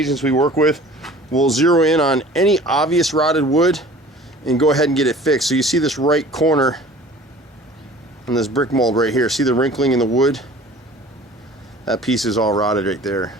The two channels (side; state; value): both; normal; correlation 0.46